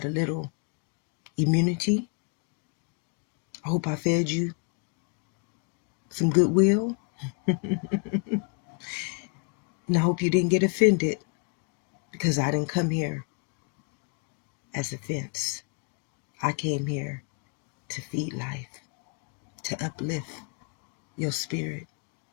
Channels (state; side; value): quieter; right; 35.5 dB